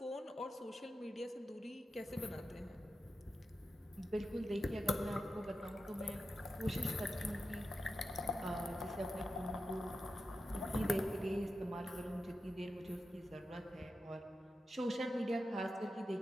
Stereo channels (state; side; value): normal; both; correlation 0.90